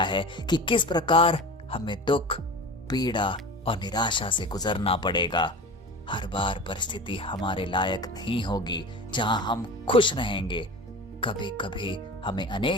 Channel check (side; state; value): both; normal; correlation 0.34